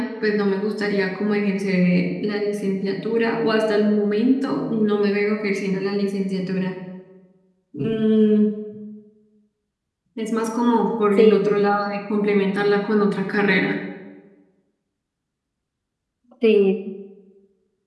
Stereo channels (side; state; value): both; identical; correlation 1.00